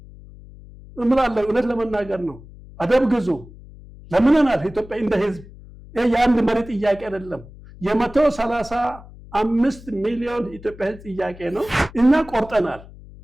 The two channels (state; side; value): noise; left; hum, 19 dB below the sound